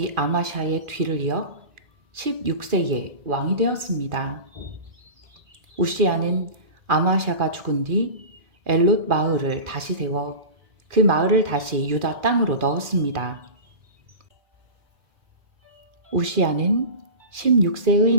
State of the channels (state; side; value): late; left; 2.4 ms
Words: 아마샤의 뒤를 이어 16세에 왕이 되었습니다. 우시야는 아마샤가 죽은 뒤 엘롯 마을을 다시 세워 그 마을을 다시 유다 땅으로 넣었습니다. 우시야는 16세의